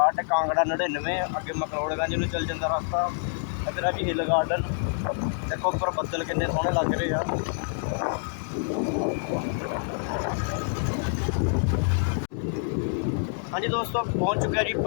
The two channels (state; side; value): silent; right; digital silence